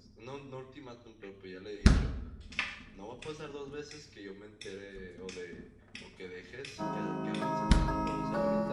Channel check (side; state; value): both; identical; correlation 1.00